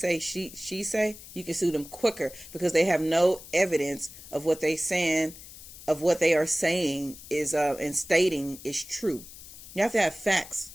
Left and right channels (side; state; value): left; noise; hiss, 16 dB below the sound